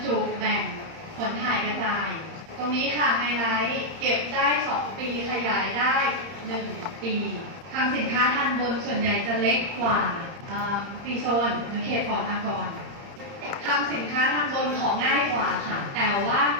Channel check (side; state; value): left; late; 30 ms